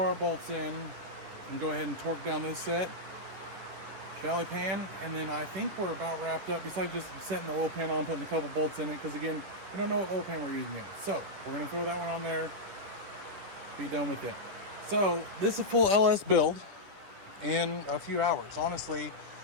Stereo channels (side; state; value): left; late; 11 ms